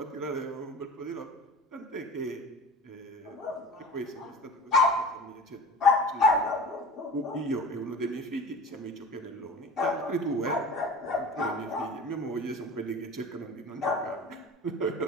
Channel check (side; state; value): both; normal; correlation 0.37